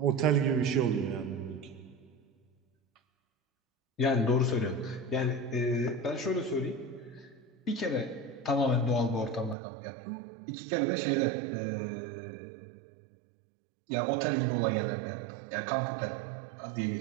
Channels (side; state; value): left; drops out; at 9.6 s